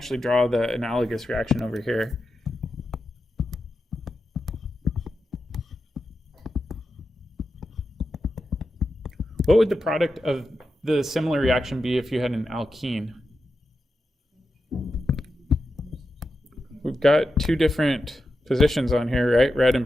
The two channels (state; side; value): normal; both; correlation 0.89